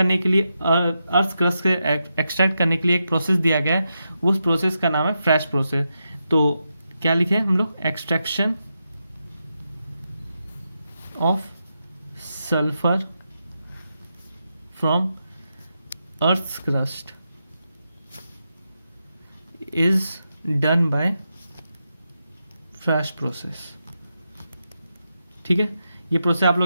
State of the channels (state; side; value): inverted; both; correlation -0.86